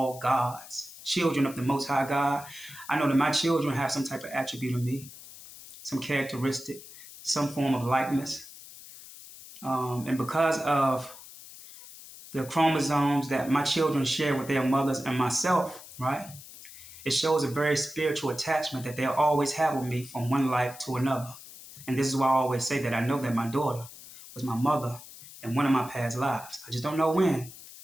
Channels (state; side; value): noise; left; hiss, 17 dB below the sound